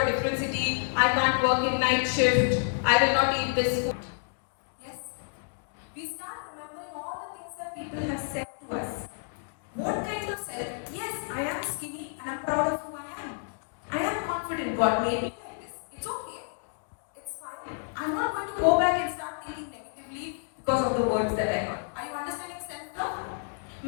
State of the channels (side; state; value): right; silent; digital silence